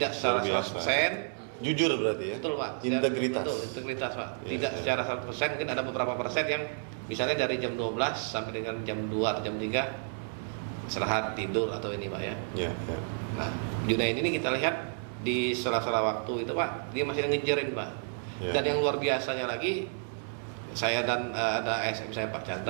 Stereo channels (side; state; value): left; silent; 57 dB below the other